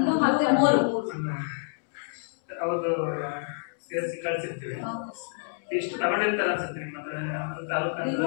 ಮತ್ತೆ 3 ಹೌದು ಸೇರಿಸಿ ಕಳಿಸಿರ್ತೀವಿ. ಎಷ್ಟು ತಗೊಂಡಿರ್ತಾರೆ ಅನ್ಸುತ್ತೆ ನಿಮ್ಮ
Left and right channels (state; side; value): silent; right; digital silence